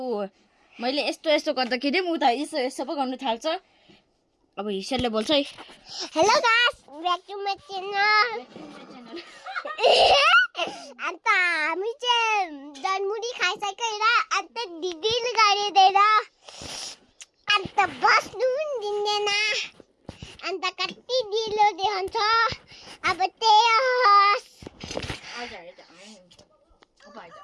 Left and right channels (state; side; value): identical; both; correlation 1.00